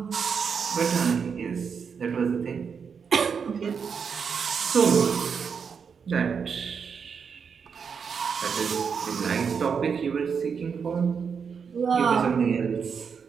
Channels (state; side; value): quieter; left; 6.3 dB